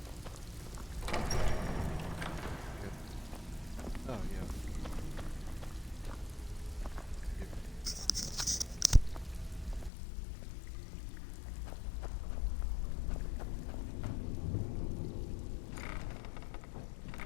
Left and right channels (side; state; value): right; drops out; at 9.9 s